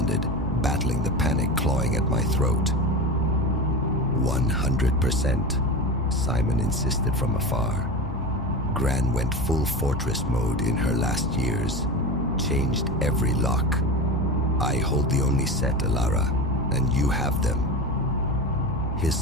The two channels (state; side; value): normal; both; correlation 0.26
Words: battling the panic clawing at my throat. 100%, Simon insisted from afar. Gran went full fortress mode in her last years, changed every lock. I hold the only set, Alara, and you have them. His